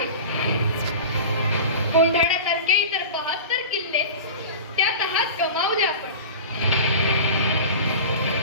कोंढाण्यासारखे इतर 72 किल्ले त्या तहात गमावले आपण.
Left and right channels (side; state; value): both; inverted; correlation -0.34